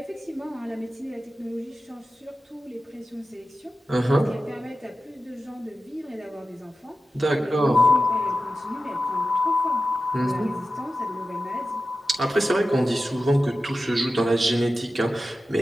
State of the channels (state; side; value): normal; both; correlation 0.93